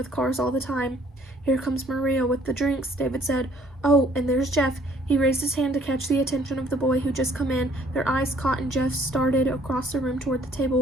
cars all the time. Here comes Maria with the drinks, David said. Oh, and there's Jeff. He raised his hand to catch the attention of the boy who just come in. Their eyes caught and Jeff started across the room toward the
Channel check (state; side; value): normal; both; correlation 0.60